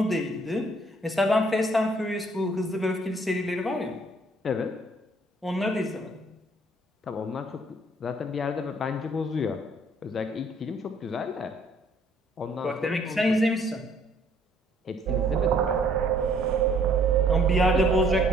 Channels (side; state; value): both; normal; correlation 0.62